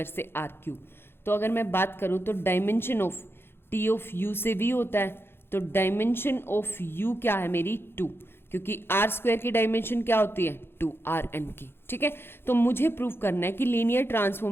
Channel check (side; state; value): right; late; 0.11 ms